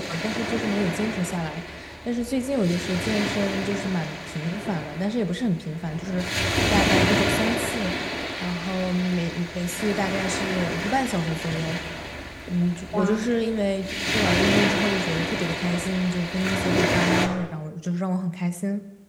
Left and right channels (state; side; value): identical; both; correlation 1.00